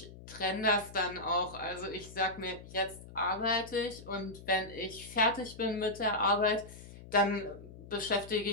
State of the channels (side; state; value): left; noise; hum, 16 dB below the sound